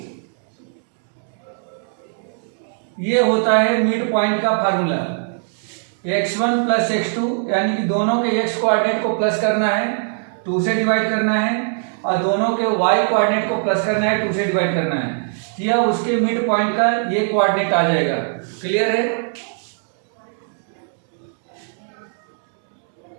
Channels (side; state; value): left; silent; 65 dB below the other